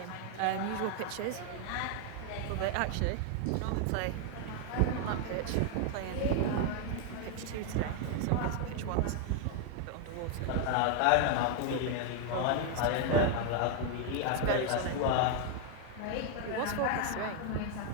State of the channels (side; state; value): both; different; correlation 0.00